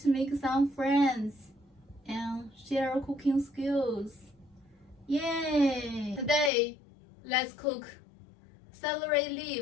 make some friends and share cooking skills. Yay! Today, let's cook celery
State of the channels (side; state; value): right; drops out; at 6.5 s